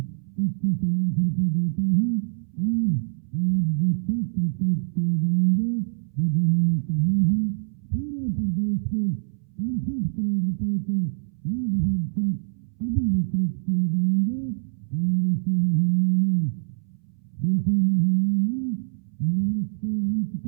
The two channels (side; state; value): left; silent; 62 dB below the other